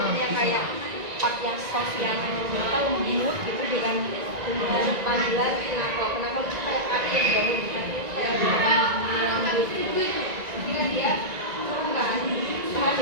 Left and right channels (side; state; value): left; late; 1.9 ms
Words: kayak part yang soft yang lembut gitu dengan panggilan kenapa itu kayak kaki yang dibangun kaki itu kayak lembut gitu. Kira dia turunkan paham